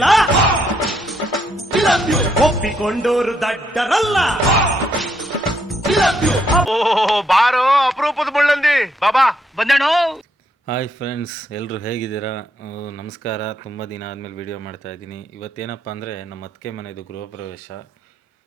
ಒಪ್ಪಿಕೊಂಡೋರು ದಡ್ಡರಲ್ಲ. ಬಾರೋ ಅಪರೂಪದ ಮುಳ್ಳಂದಿ ಬಾಬಾ ಬಂದೇಣು. ಹಾಯ್ ಫ್ರೆಂಡ್ಸ್, ಎಲ್ಲರೂ ಹೇಗಿದ್ದೀರಾ? ನಮಸ್ಕಾರ. ತುಂಬ ದಿನ ಆದಮೇಲೆ ವೀಡಿಯೋ ಮಾಡ್ತಾಯಿದ್ದೀನಿ. ಇವತ್ತೇನಪ್ಪ ಅಂದರೆ ನಮ್ಮ ಅತ್ತಿಗೆ ಮನೆಯದು ಗೃಹ ಪ್ರವೇಶ.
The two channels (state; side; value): normal; both; correlation 0.75